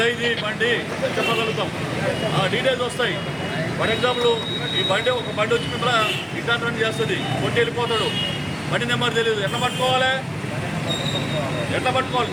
బండి చెప్పగలుగుతాం. డీటెయిల్స్ వస్తాయి. ఫర్ ఎగ్జాంపుల్ ఈ బండి ఒక బండి వచ్చి మిమ్మల్ని ఇంటర్వ్యూ చేస్తుంది, కొట్టి వెళ్ళిపోతాడు. బండి నెంబర్ తెలియదు, ఎట్లా పట్టుకోవాలి?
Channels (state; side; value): identical; both; correlation 1.00